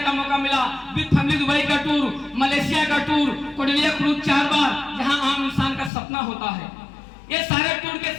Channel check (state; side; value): drops out; right; at 5.9 s